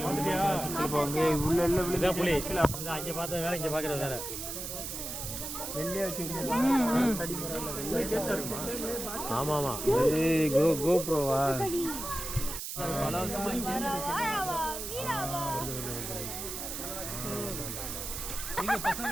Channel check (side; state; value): right; noise; hiss, 6 dB below the sound